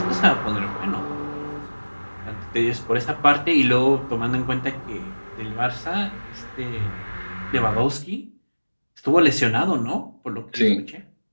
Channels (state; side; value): inverted; both; correlation -1.00